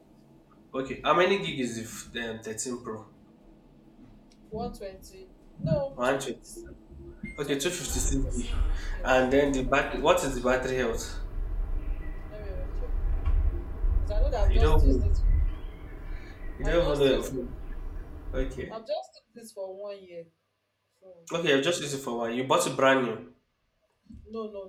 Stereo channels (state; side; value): identical; both; correlation 1.00